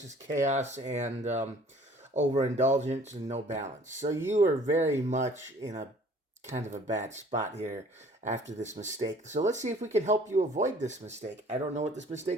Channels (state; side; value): normal; both; correlation 0.53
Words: is chaos and overindulgence and no balance. So you are very much in a kind of a bad spot here after this mistake. So let's see if we can help you avoid this mistake. I don't know what this